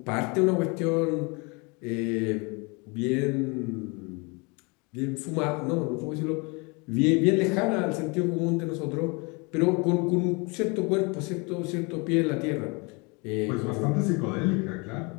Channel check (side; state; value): right; quieter; 29.7 dB